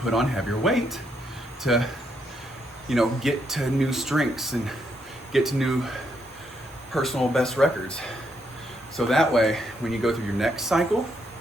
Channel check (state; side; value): normal; both; correlation 0.77